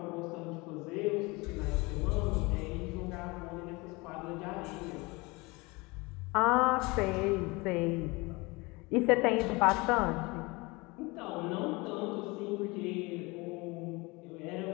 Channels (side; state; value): right; quieter; 25.0 dB